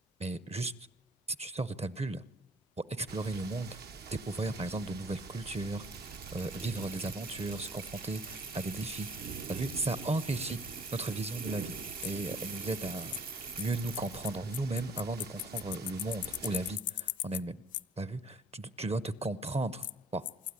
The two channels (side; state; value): both; normal; correlation 0.55